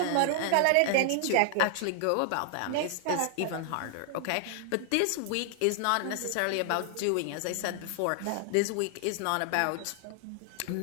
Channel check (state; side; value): different; both; correlation 0.00